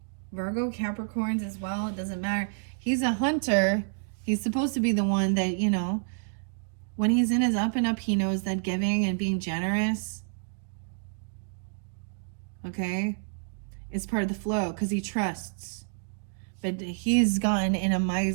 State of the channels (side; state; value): left; silent; digital silence